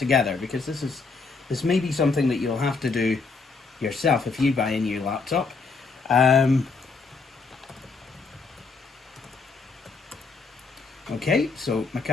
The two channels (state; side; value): quieter; right; 4.4 dB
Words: because this may be something that you'll have to do yourself if you buy a new laptop. Okay, so